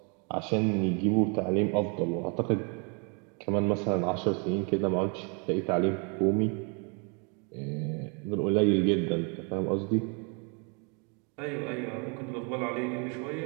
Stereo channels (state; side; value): quieter; left; 35.4 dB